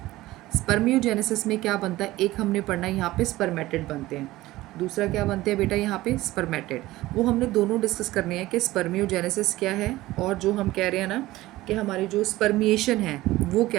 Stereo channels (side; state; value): left; quieter; 17.5 dB